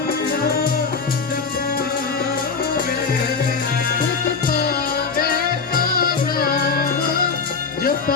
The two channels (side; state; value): right; quieter; 5.0 dB